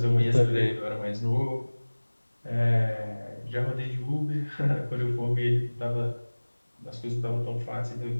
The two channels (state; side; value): inverted; both; correlation -1.00